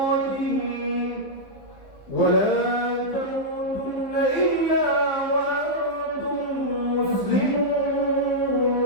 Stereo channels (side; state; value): right; late; 15 ms